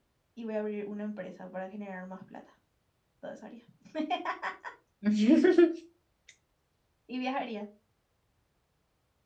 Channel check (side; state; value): both; identical; correlation 1.00